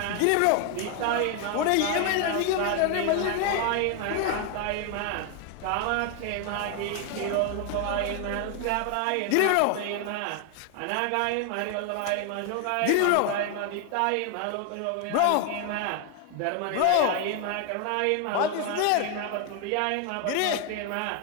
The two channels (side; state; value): both; different; correlation 0.01